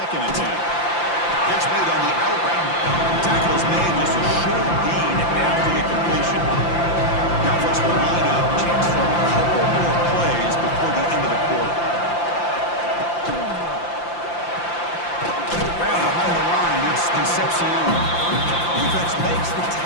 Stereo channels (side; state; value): right; late; 5.8 ms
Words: and 10. Catch made on the outbound. Tackle is made just a short gain after the completion. Now folks will line up. Chance for a couple more plays before the end of the quarter. Right behind the line, it's Concepcion. Defense makes the